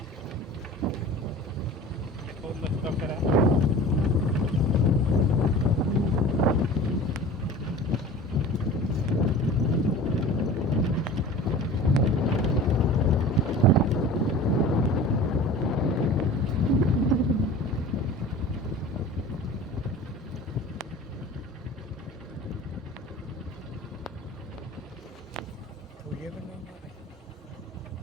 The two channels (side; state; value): both; normal; correlation 0.39